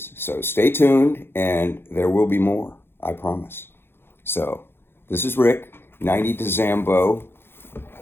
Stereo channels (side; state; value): right; late; 0.11 ms